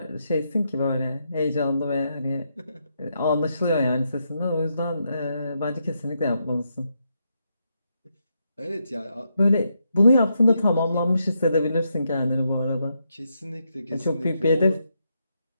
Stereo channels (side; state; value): both; inverted; correlation -0.81